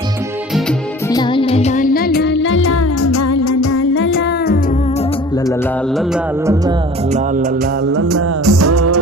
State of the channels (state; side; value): normal; both; correlation 0.44